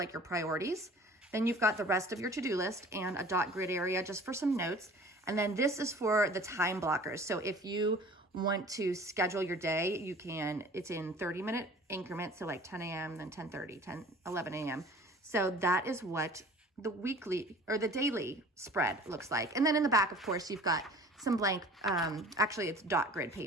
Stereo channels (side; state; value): both; normal; correlation 0.46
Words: your priorities. Then you've got the rest of your to-do list and a dot grid area just for some notes. And then this is for the time blockers. So if you want to schedule your day, you can. It's in 30-minute increments, so like 10 a.m., then 10:30, 11 a.m. So that is what the weekly or the daily spread looks like. And then in the back, of course, you've got some blank, actually it's dot grid